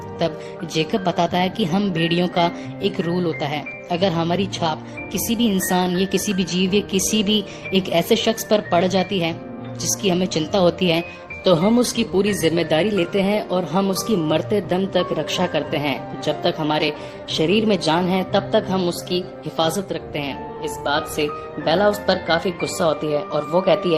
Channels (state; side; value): identical; both; correlation 1.00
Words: तब जेकब बताता है कि हम भेड़ियों का एक रूल होता है, अगर हमारी छाप किसी भी इंसान या किसी भी जीव या किसी भी एक ऐसे शख्स पर पड़ जाती है जिसकी हमें चिंता होती है तो हम उसकी पूरी जिम्मेदारी लेते हैं और हम उसकी मरते दम तक रक्षा करते हैं। जब तक हमारे शरीर में जान है तब तक हम उसकी हिफाजत रखते हैं। इस बात से बेला उस पर काफी गुस्सा होती है और वो कहती